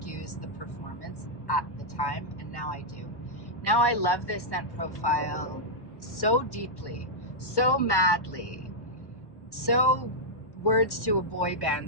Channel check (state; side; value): late; right; 1.1 ms